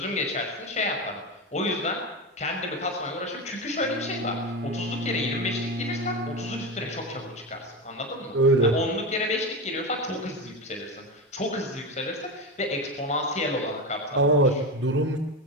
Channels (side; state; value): both; normal; correlation 0.19